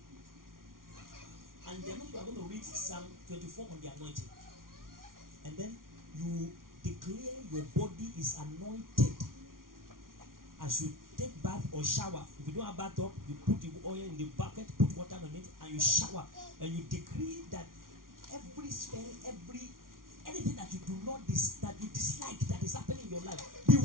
And then you are going to read Psalm 24 on the anointing. And then you declare your body is anointed. As you take bath or shower, if you don't have bathtub, you put the oil in the bucket, put water on it, and you shower. And you decree that every spell, every anything that you do not that you dislike that is happening in your life, be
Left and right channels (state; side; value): late; left; 0.91 ms